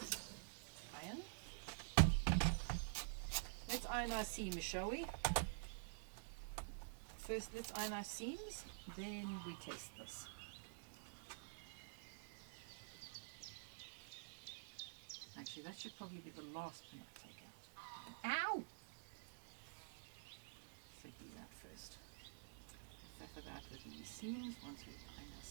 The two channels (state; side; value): silent; left; digital silence